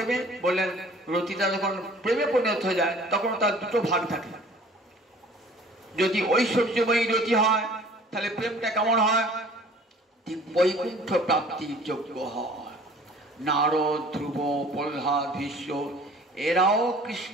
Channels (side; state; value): both; normal; correlation 0.50